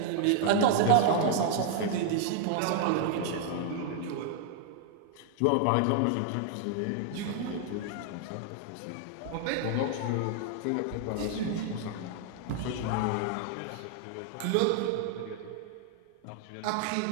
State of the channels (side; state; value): both; different; correlation 0.00